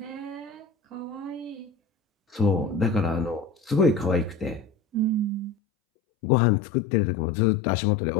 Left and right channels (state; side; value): drops out; right; at 5.6 s